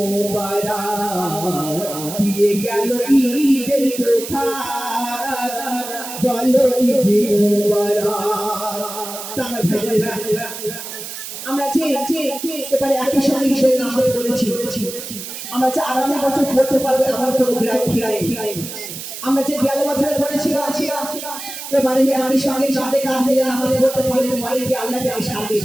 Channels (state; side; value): noise; right; hiss, 9 dB below the sound